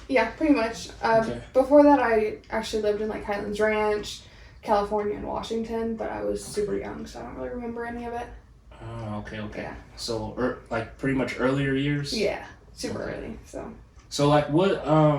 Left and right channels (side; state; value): both; identical; correlation 1.00